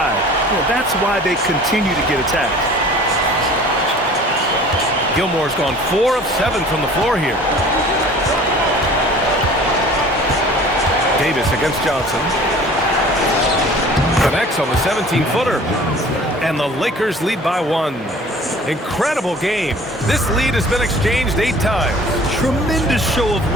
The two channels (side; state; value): both; normal; correlation 0.47